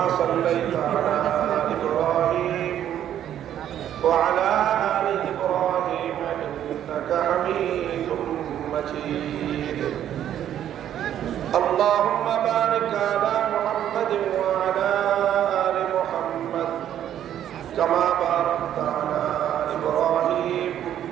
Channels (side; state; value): left; quieter; 10.7 dB